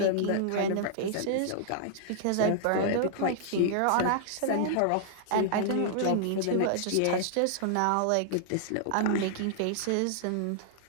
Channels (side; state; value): both; different; correlation -0.01